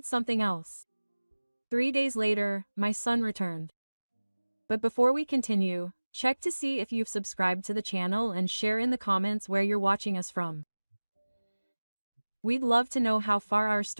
something else. 3 days later, my son returned. But before we continue, check to see if you've subscribed to the channel and share in the comments where you're watching us from. We'd love to know how far our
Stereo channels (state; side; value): inverted; both; correlation -1.00